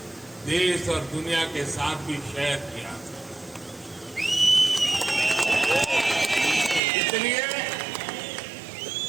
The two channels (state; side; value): drops out; left; at 6.8 s